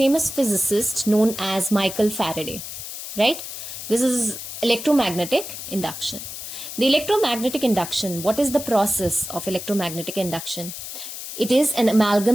physicists known as Michael Faraday, right? This is electromagnetic induction. The electromagnetic induction, what is the process of electromagnetic induction? It is an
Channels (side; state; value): left; noise; hiss, 9 dB below the sound